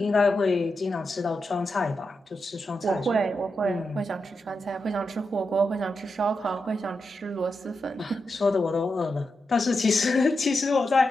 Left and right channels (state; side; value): normal; both; correlation 0.87